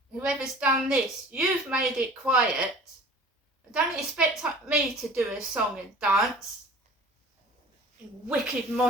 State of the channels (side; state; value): both; normal; correlation 0.44